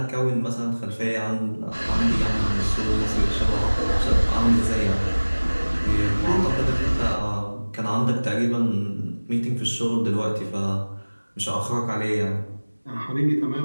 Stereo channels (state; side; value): inverted; both; correlation -1.00